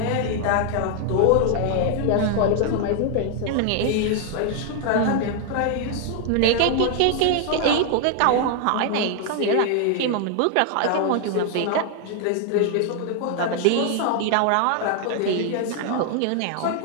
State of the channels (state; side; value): different; both; correlation 0.00